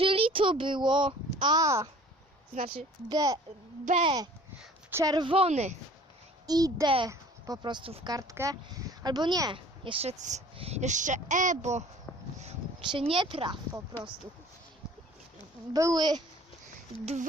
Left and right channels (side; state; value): both; normal; correlation 0.49